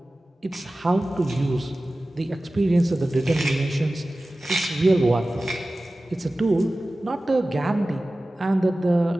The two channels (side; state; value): both; normal; correlation 0.96